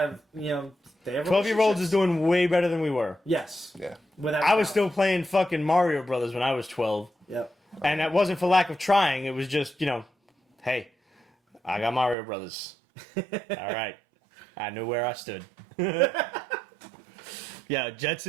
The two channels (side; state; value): left; drops out; at 12.2 s